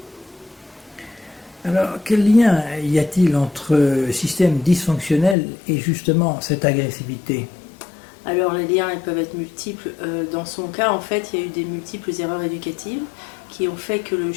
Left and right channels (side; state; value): right; drops out; at 5.4 s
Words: Alors, quel lien y a-t-il entre système dysfonctionnel et justement cette agressivité ? Alors, les liens ils peuvent être multiples. Dans son cas, en fait, il y a eu des multiples erreurs éducatives qui ont fait que le